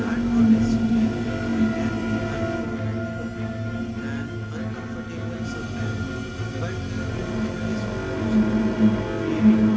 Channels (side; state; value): both; identical; correlation 1.00